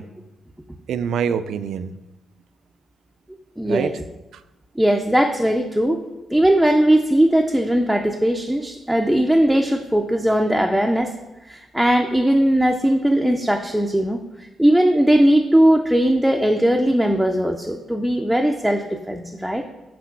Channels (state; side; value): normal; both; correlation 0.95